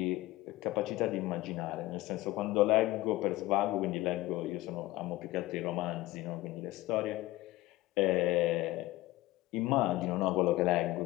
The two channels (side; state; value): right; quieter; 17.9 dB